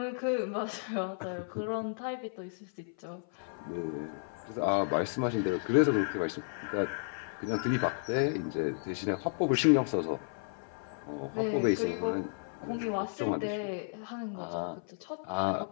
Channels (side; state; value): right; silent; 56 dB below the other